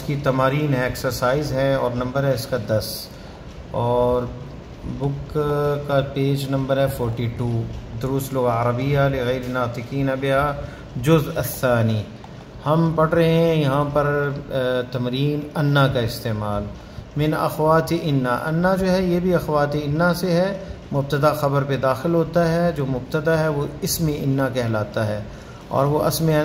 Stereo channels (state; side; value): identical; both; correlation 1.00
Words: کی تمارین ہے، ایکسرسائز ہے، اور نمبر ہے اس کا 10، اور بک کا پیج نمبر ہے 42، دروس لغہ عربیہ لغیر ناطقین بہا جزء الثانی۔ ہم پڑھ رہے ہیں یہاں پر تمرین انا کا استعمال، من اخوات انا۔ انا جو ہے یہ بھی اخوات انا سے ہے، مبتدا خبر پہ داخل ہوتا ہے، جو مبتدا ہے وہ اسم انا کہلاتا ہے، اور وہ